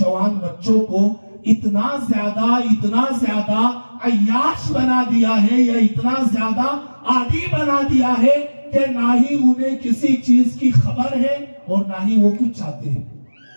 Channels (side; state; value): both; inverted; correlation -1.00